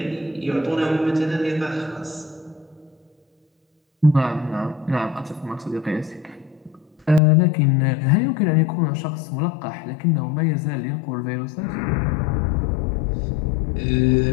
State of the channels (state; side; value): drops out; right; at 7.2 s